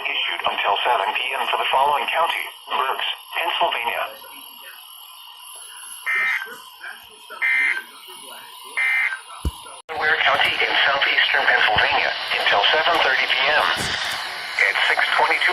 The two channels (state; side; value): identical; both; correlation 1.00